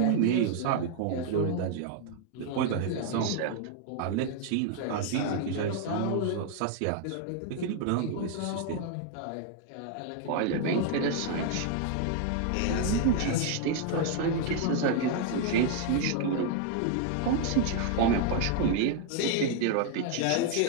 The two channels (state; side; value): different; both; correlation 0.00